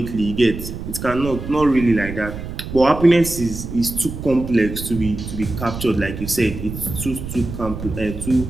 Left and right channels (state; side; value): noise; right; rumble, 8 dB below the sound